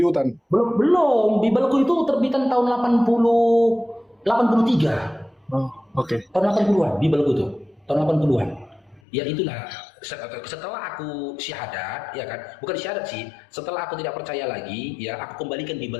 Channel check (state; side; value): drops out; right; at 9.0 s